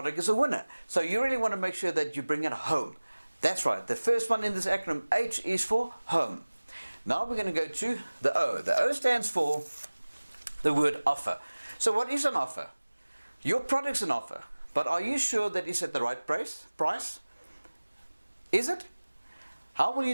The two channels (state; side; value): inverted; both; correlation -1.00